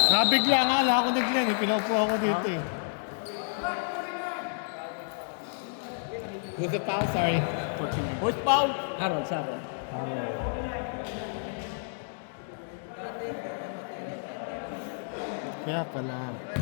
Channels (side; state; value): right; silent; digital silence